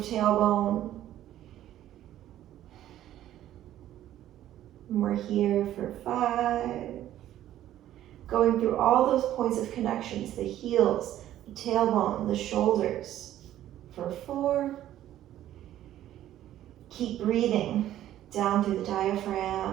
tailbone. And we're here for 5. Going through all those points of connections, the heels, the tailbone, the shoulders, for 4. Keep breathing down through the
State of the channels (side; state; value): left; quieter; 12.6 dB